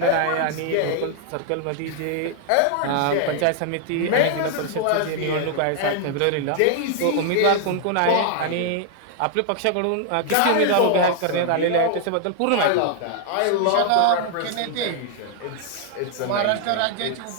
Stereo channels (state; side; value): different; both; correlation 0.00